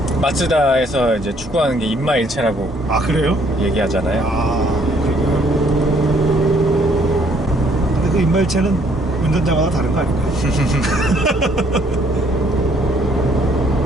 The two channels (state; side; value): normal; both; correlation 0.64